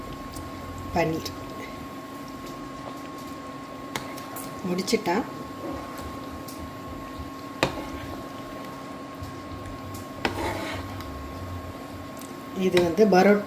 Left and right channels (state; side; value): identical; both; correlation 1.00